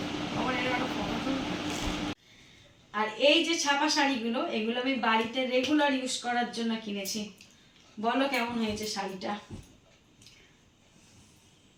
আর এই যে ছাপা শাড়িগুলো, এগুলো আমি বাড়িতে রেগুলার ইউজ করার জন্য কিনেছি, বলো কেমন হয়েছে শাড়িটা।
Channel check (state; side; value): identical; both; correlation 1.00